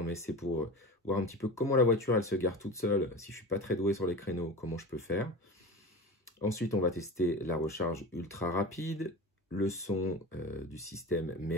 mais c'est pour voir un petit peu comment la voiture elle se gare toute seule, si je ne suis pas très doué sur les créneaux, comment je peux faire. Ensuite, on va tester la recharge ultra rapide, le son du système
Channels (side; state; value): both; normal; correlation 0.31